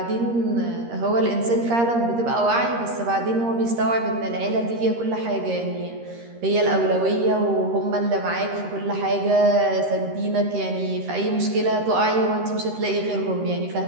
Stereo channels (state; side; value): late; left; 13 ms